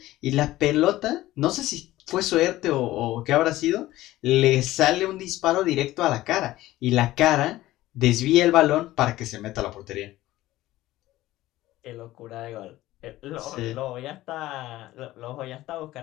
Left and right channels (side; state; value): right; quieter; 16.2 dB